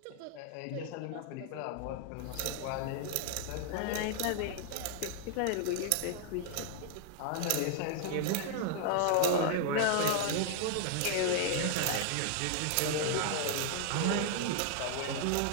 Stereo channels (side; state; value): both; different; correlation 0.00